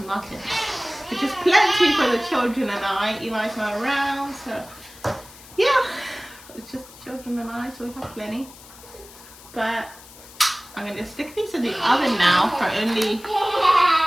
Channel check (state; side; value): noise; left; hiss, 20 dB below the sound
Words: muffins, which is plenty for the children and I. Eli's not around, so yeah, it's just the children and I, so we have plenty. But I'm going to stick these in the oven now for only